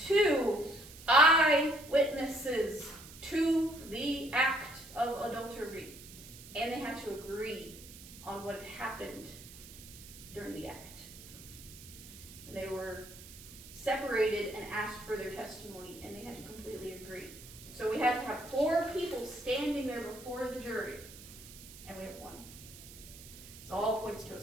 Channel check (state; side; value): noise; right; hiss, 17 dB below the sound